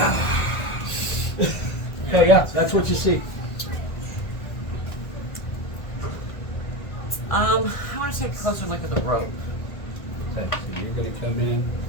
So yeah, that's what you see. I want to take a closer look at the rope. Okay, so you're gonna come in.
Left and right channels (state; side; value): late; right; 1.5 ms